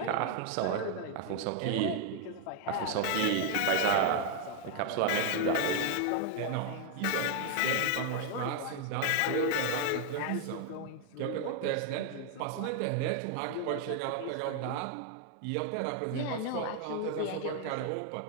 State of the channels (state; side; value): different; both; correlation 0.00